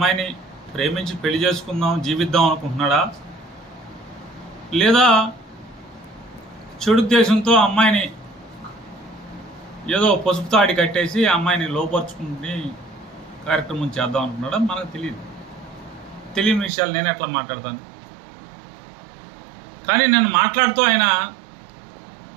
ప్రేమించి పెళ్లి చేసుకుందాం, జీవిద్దాం అనుకుంటున్నాడా, లేదా చెడుద్దేశంతో అమ్మాయిని ఏదో పసుపు తాడి కట్టేసి అమ్మాయిని లోపరుచుకుని కార్యక్రమం చేద్దాం అనుకున్నాడా మనకు తెలియదు. తెలియని విషయాలు నేను ఎట్లా మాట్లాడతాను. కానీ నేను మాట్లాడుతూ ఆయన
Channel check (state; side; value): drops out; left; at 16.7 s